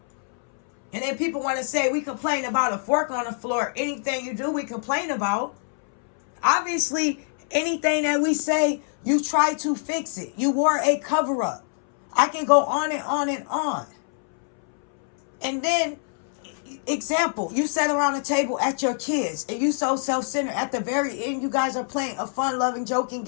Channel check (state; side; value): silent; right; 62 dB below the other